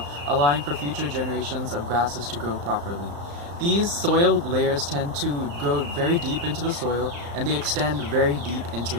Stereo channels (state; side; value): late; left; 35 ms